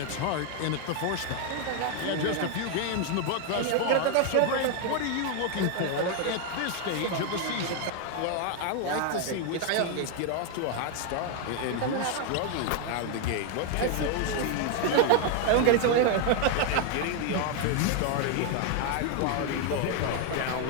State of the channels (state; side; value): different; both; correlation 0.01